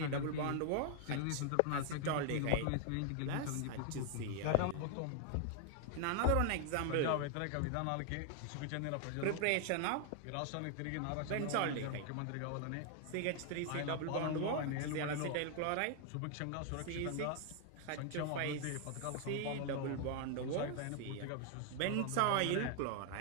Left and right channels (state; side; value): different; both; correlation 0.00